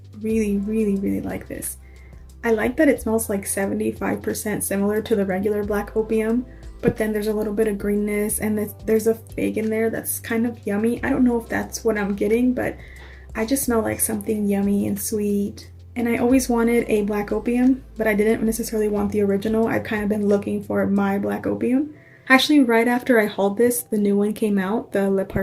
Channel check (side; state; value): both; identical; correlation 1.00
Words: really like this. I like that it smells like 75% similar to the regular Black Opium, but then there's a little bit of greenness and there's a fig in there that's kind of yummy. I don't know if that's what I'm getting, but I just smell like something yummy and sweet. And I always wanted a Black Opium, but I didn't necessarily want the original. I've kind of been looking for my Black Opium. Actually, right after I hauled this, the new one came out, the Le